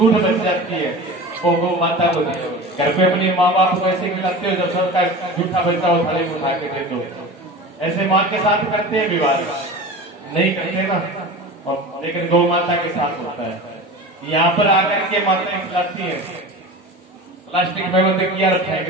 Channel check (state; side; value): normal; both; correlation 0.33